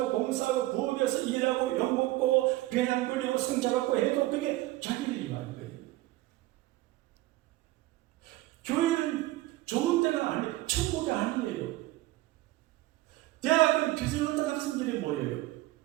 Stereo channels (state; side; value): quieter; left; 17.8 dB